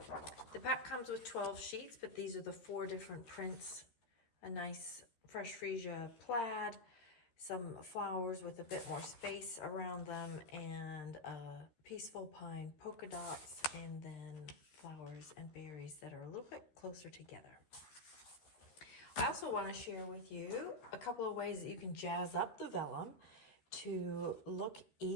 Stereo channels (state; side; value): late; right; 13 ms